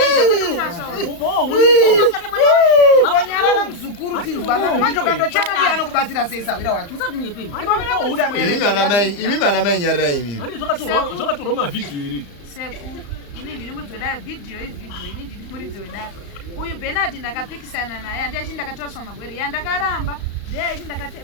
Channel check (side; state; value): right; late; 34 ms